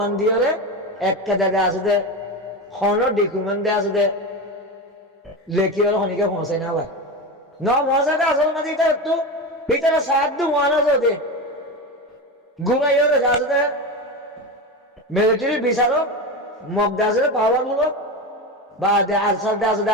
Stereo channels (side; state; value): both; normal; correlation 0.21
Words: দিয়ে একটা জায়গা আছে হন ডকুমেন্ট দিয়ে আছে লেখি হলো হনিকে পৌঁছাই না ভাই ন পৌঁছাতে আসল মাঝে এটা একটু ভিতরে সাহায্য ওয়ান আছে ঘুমাই হলে আছে মিলিটারি বিচারক মগদা আছে পাওয়ার মূলক বা আরসার দে আছে